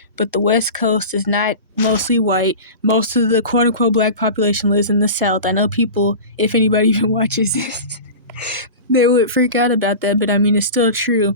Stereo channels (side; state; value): both; inverted; correlation -0.31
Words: but the West Coast is not mostly white. Most of the quote-unquote black population lives in the South. I know people, if anybody even watches this, they would freak out about that, but I mean, it's still true.